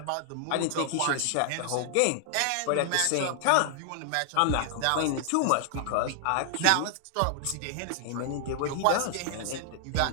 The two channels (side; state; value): both; different; correlation 0.00